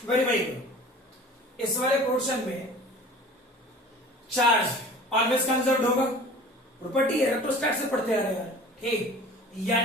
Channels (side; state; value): both; normal; correlation 0.43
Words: वेरीफाई करो, इस वाले पोर्शन में चार्ज ऑलवेज कंजर्व्ड होगा, प्रॉपर्टी है इलेक्ट्रोस्टैट से पढ़ते आ रहे हैं, ठीक,